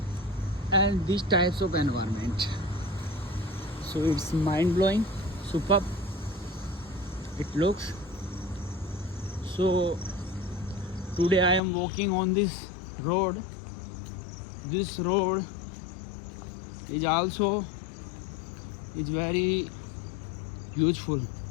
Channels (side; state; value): right; drops out; at 11.6 s